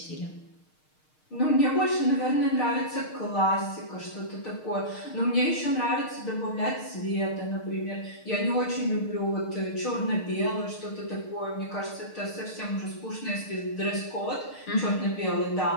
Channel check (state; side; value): late; right; 6.5 ms